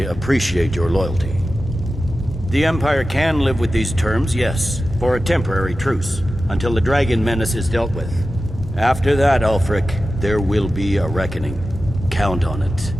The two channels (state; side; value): normal; both; correlation 0.93